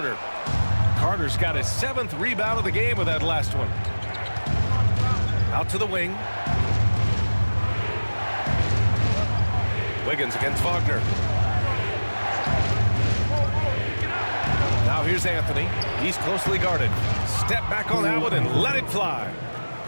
Carter's got his 7th rebound of the game with that last one. Out to the wing. Wiggins against Wagner. Now here's Anthony. He's closely guarded. Step back on that one and let it fly.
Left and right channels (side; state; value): both; inverted; correlation -1.00